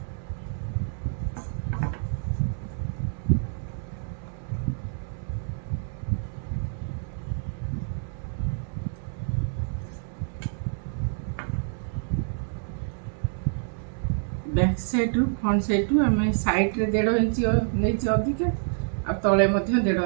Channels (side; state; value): left; silent; 60 dB below the other